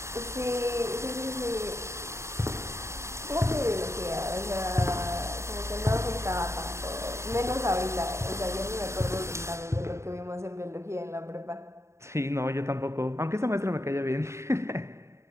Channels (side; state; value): left; late; 0.14 ms